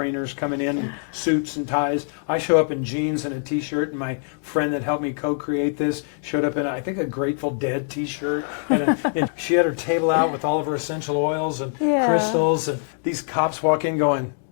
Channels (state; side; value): silent; right; 61 dB below the other